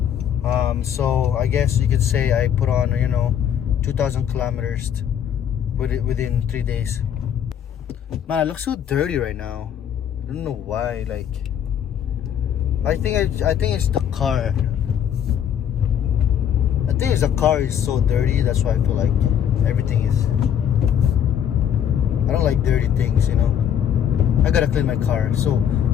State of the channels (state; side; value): quieter; right; 9.2 dB